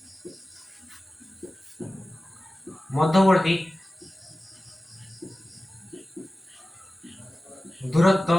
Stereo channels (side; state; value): both; normal; correlation 0.96